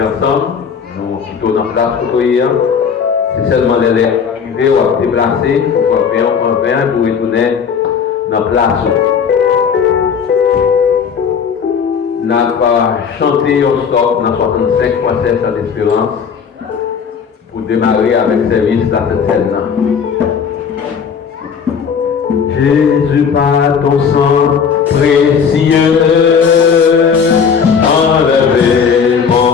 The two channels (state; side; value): quieter; right; 6.6 dB